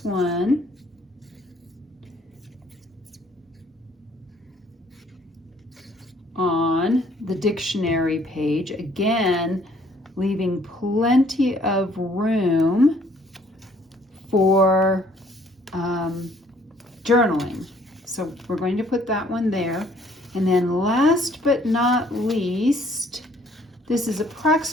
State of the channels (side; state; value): both; normal; correlation 0.61